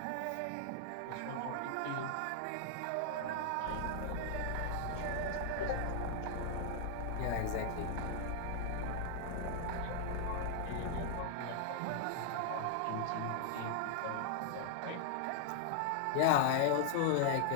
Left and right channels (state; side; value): different; both; correlation 0.00